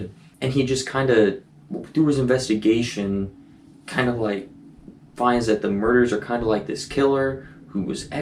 he just kind of, through his investigation, kind of like finds that the murders are kind of like this killer who was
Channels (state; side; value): identical; both; correlation 1.00